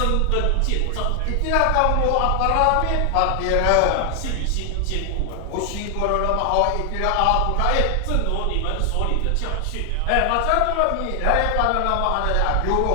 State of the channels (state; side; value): different; both; correlation 0.00